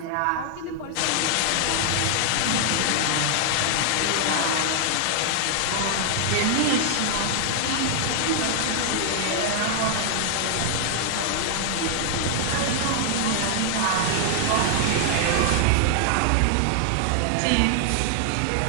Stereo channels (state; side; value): different; both; correlation 0.00